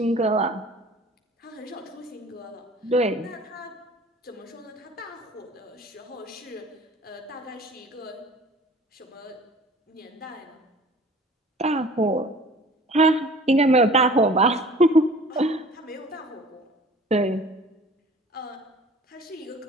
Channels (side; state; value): both; normal; correlation 0.47